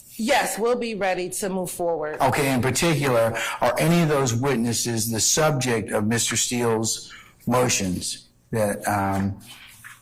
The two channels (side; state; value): both; identical; correlation 1.00